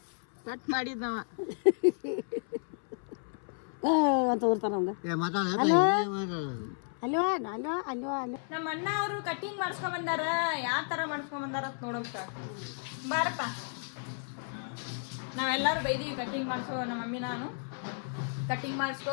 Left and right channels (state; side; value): silent; right; 56 dB below the other